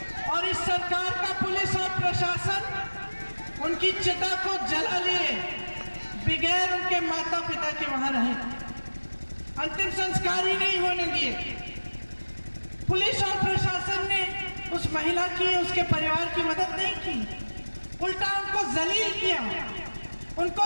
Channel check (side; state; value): both; inverted; correlation -1.00